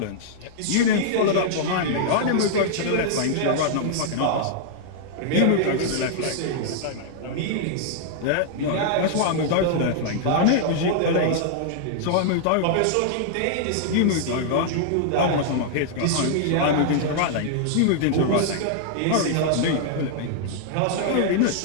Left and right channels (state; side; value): different; both; correlation -0.01